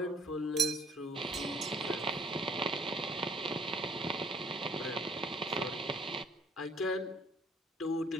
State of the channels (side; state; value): both; normal; correlation 0.58